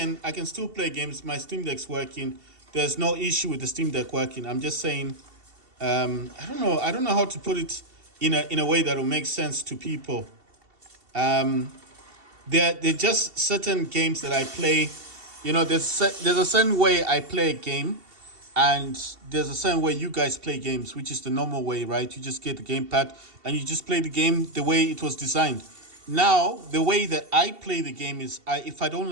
still play games. My Steam Deck's working. There's no issue with the Steam Deck working. I'm just saying, I don't know. I don't know how to put it in a way that will make sense to people. There just certain games that I play. There's a certain way I play a game, and there's a certain way you guys play games, which is the normal way, right? You just get the gamepad and you just play the game the way it was designed. Now, the way that I play the game is, if I don't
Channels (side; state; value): left; late; 2.7 ms